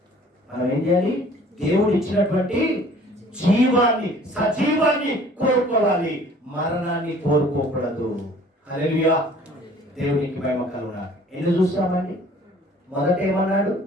మనం ఏం చేయాలి? దేవుడు ఇచ్చినటువంటి జీవాన్ని, సజీవాన్ని కోరుకోవాలి, మరణాన్ని కోరుకోకూడదు. హల్లెలూయా. దేవునికి మహిమ కలుగును. ఎన్ని చూస్తామండి? మొదట ఏమన్నాడు?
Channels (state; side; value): normal; both; correlation 0.52